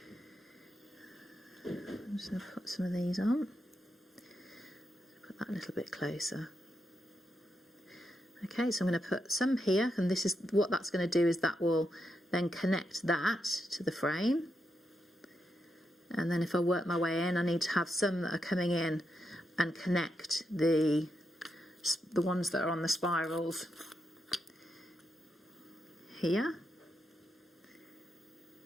I'm just going to put some of these on. Put that a little bit closer. Okay, so I'm going to put some here, and this is what that's going to do, is that will then connect that to the frame. And then if I work my way in, I need to have some that are coming in and connect the ones that are on the spirals here.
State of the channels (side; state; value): both; normal; correlation 0.83